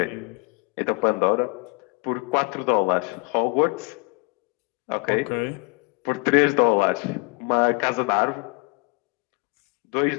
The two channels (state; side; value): quieter; right; 31.4 dB